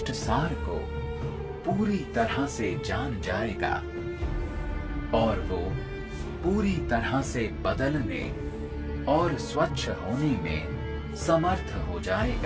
सार को पूरी तरह से जान जाएगा और वो पूरी तरह से बदलने और स्वच्छ होने में समर्थ हो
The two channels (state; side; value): identical; both; correlation 1.00